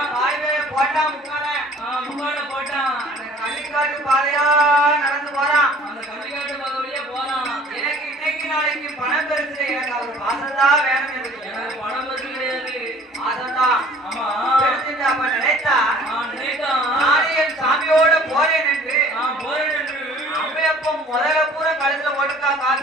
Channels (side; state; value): both; normal; correlation 0.51